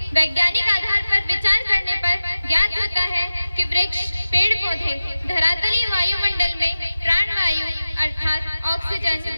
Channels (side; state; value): both; inverted; correlation -0.95